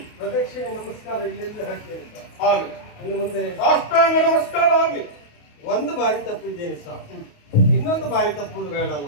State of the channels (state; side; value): late; right; 28 ms